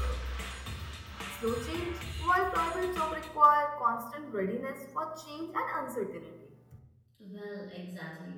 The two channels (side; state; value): both; identical; correlation 1.00